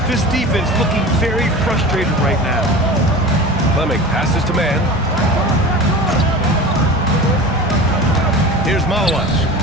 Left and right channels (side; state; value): both; normal; correlation 0.34